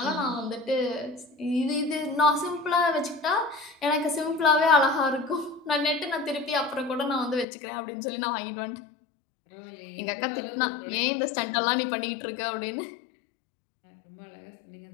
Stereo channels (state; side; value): drops out; right; at 7.5 s